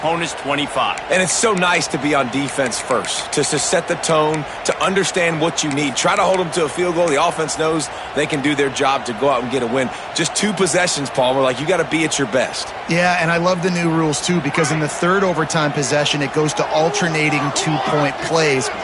25. And it's so nice to be on defense first, to set the tone, to understand what you need. Try to hold them to a field goal. The offense knows they can do their job to go out and get a win. Just 2 possessions, Palmer. Like, you got to be at your best. Yeah, and I love the new rules, too, because in the third overtime possession, it goes to alternating 2-point plays,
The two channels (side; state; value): both; identical; correlation 1.00